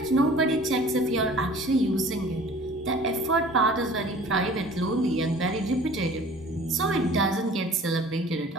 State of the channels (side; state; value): both; normal; correlation 0.47